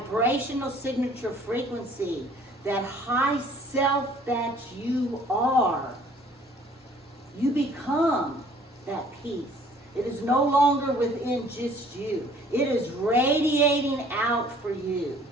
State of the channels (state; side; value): normal; both; correlation 0.55